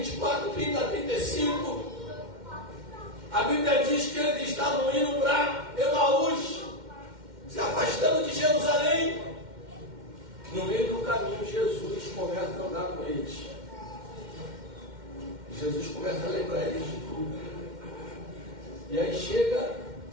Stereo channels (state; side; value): late; left; 2.1 ms